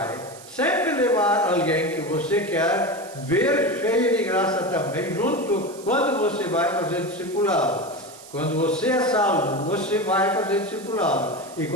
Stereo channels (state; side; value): noise; right; hiss, 19 dB below the sound